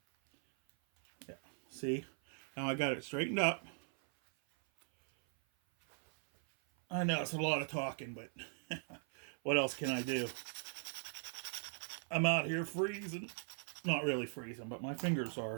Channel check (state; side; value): silent; left; 51 dB below the other